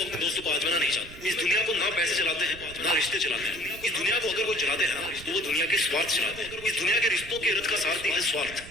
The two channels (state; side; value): noise; right; rumble, 17 dB below the sound